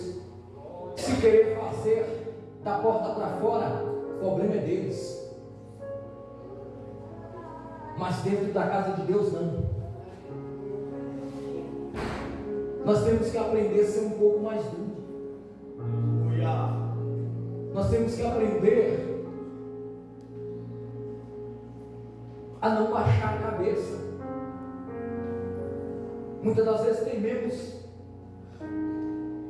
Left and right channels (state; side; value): identical; both; correlation 1.00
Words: se querer fazer da porta para fora, o problema é deles. Mas dentro da casa de Deus não. Nós temos que aprender a ser um pouco mais duro. Aleluia. Nós temos que aprender a não baixar a cabeça. Muitas das vezes tememos